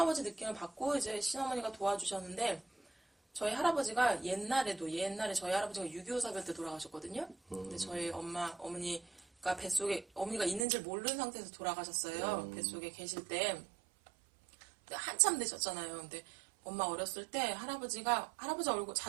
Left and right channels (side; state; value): left; drops out; at 10.7 s